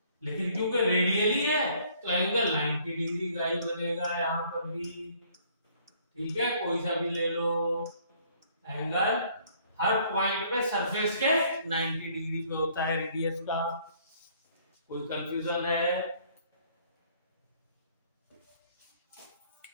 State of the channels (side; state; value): both; inverted; correlation -0.61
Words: लेकिन क्योंकि रेडियली है तो एंगल 90 डिग्री का ही बनेगा यहाँ पर भी। ठीक है, कोई सा भी ले लो एंगल, हर पॉइंट पे सरफेस के 90 डिग्री पे होता है रेडियस का। कोई कंफ्यूजन है?